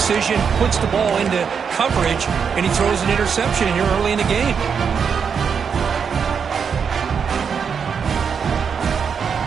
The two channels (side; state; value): left; quieter; 6.6 dB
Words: puts the ball into coverage, and he throws an interception here early in the game.